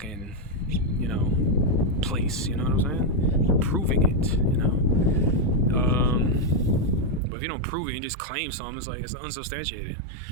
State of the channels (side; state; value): left; drops out; at 7.2 s